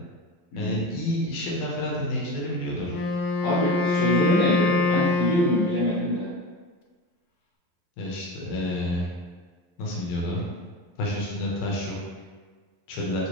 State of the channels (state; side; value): late; right; 11 ms